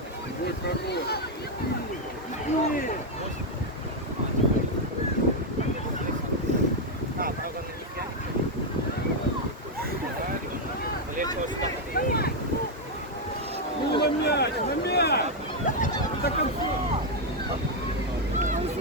Ну, на мяч, на мяч! До конца!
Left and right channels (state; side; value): normal; both; correlation 0.02